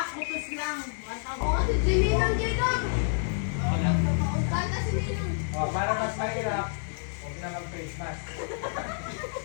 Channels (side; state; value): right; silent; 59 dB below the other